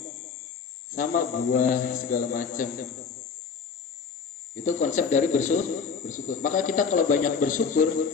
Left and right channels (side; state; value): right; quieter; 5.8 dB